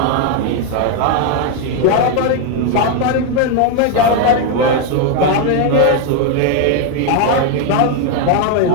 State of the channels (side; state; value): both; different; correlation 0.01